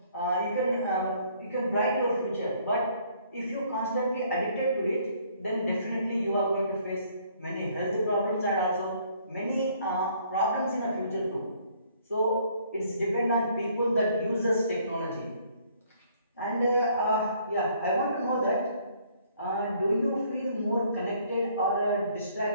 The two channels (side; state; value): both; inverted; correlation -0.62